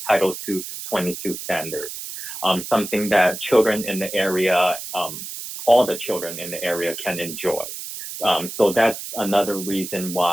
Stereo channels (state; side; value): noise; right; hiss, 9 dB below the sound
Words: Title II 22 standards, something that children in the area, all the children in the area can enjoy. So that's another reason